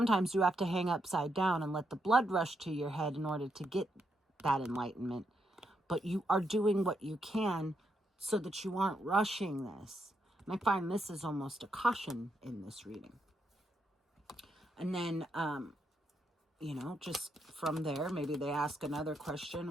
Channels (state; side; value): normal; both; correlation 0.80